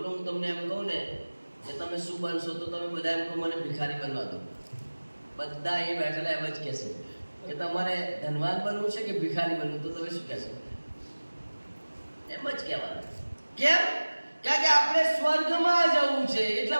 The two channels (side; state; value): both; inverted; correlation -1.00